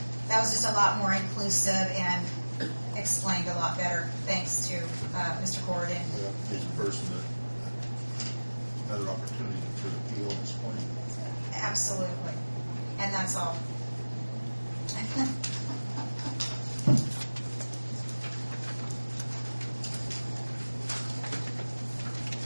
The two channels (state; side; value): inverted; both; correlation -1.00